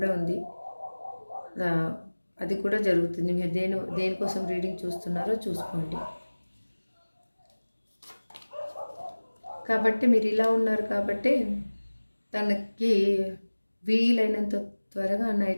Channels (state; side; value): inverted; both; correlation -1.00